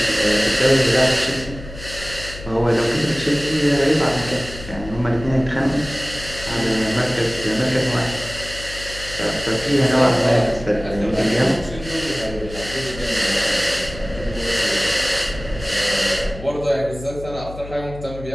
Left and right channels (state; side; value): noise; left; hum, 13 dB below the sound